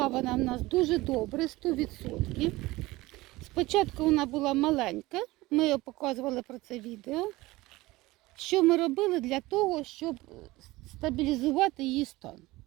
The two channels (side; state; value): left; quieter; 19.7 dB